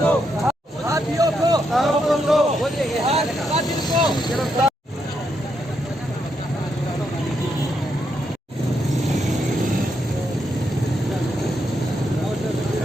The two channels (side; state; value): both; normal; correlation 0.80